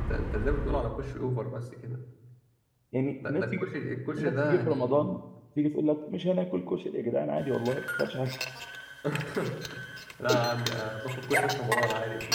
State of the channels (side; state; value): both; identical; correlation 1.00